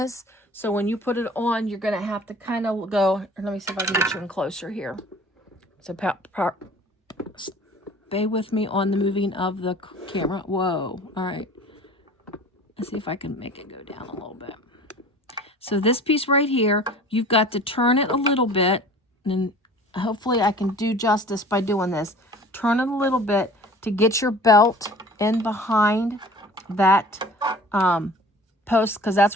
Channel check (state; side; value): normal; both; correlation 0.45